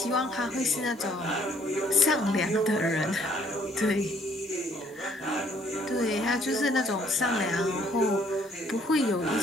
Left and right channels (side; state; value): both; normal; correlation 0.64